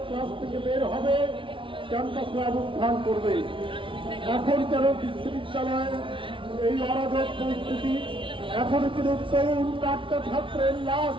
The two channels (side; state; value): left; late; 0.25 ms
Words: ক্লাস থেকে বের হবে, ক্যাম্পাসে অবস্থান করবে। এখন কেন বিশ্ববিদ্যালয়ের এই অরাজক পরিস্থিতি? এখনো কিন্তু তরুণ চারটা ছাত্রের লাশ